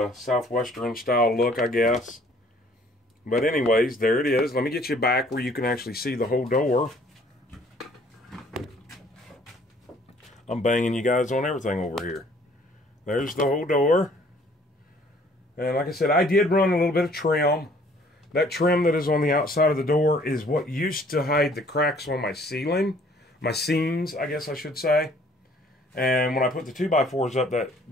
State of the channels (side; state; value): both; normal; correlation 0.58